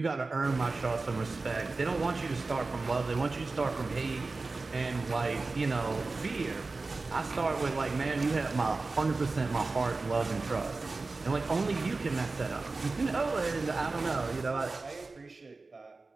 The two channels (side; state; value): left; quieter; 3.7 dB